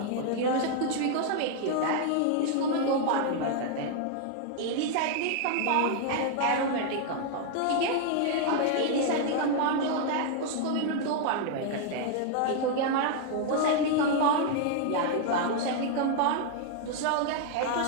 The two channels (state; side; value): different; both; correlation 0.00